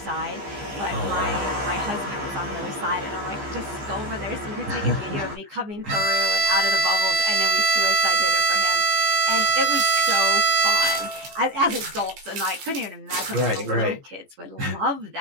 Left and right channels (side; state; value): left; late; 15 ms